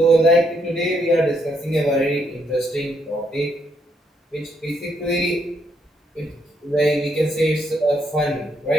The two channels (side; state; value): both; normal; correlation 0.75